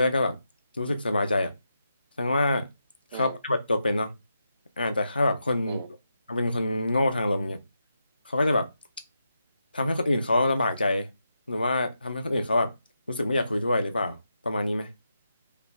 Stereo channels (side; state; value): both; inverted; correlation -0.85